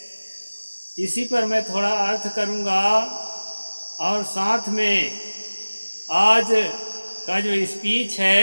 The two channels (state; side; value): inverted; both; correlation -1.00